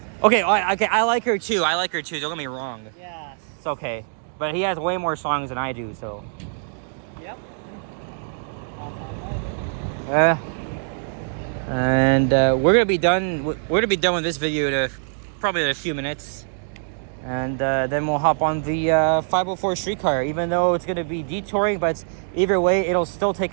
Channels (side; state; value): left; silent; digital silence